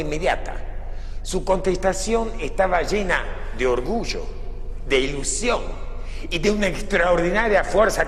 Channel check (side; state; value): both; identical; correlation 1.00